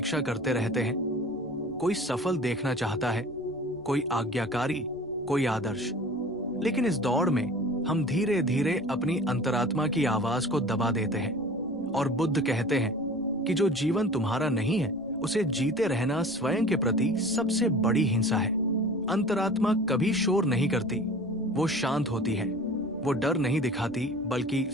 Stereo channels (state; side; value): noise; right; rumble, 26 dB below the sound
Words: करते रहते हैं। कोई सफल देखना चाहता है, कोई आज्ञाकारी, कोई आदर्श। लेकिन इस दौड़ में हम धीरे धीरे अपनी अंतरात्मा की आवाज को दबा देते हैं और बुद्ध कहते हैं कि जो जीवन तुम्हारा नहीं है, उसे जीते रहना स्वयं के प्रति सबसे बड़ी हिंसा है। अंतरात्मा कभी शोर नहीं करती, वो शांत होती है। वो डर नहीं दिखाती बल्कि